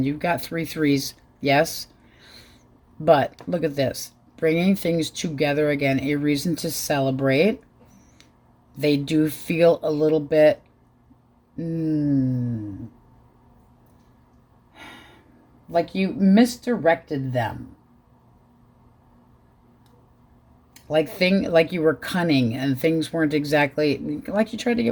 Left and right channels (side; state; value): both; identical; correlation 1.00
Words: You've got 3 threes. Yes. But look at this. Bringing things together again. A reason to celebrate. They do feel a little bit like you misdirected them. Like you were cunning and things weren't exactly like you tried to